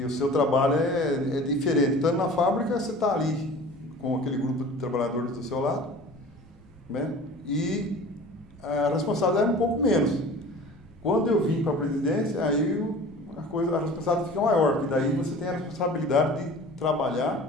o seu trabalho é diferente. Estando na fábrica, você está ali com aquele grupo de trabalhadores do seu lado, né? E a responsabilidade é um pouco menos. Quando eu vim para a presidência, aí a responsabilidade fica maior, porque daí você tem a responsabilidade de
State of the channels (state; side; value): normal; both; correlation 0.42